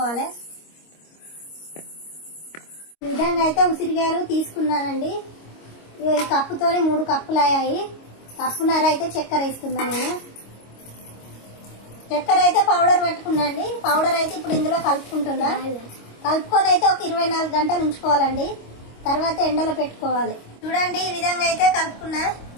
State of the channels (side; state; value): right; late; 25 ms